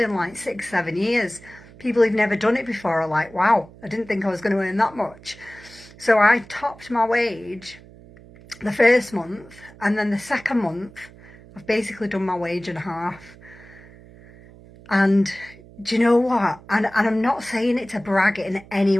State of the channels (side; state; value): right; noise; hum, 22 dB below the sound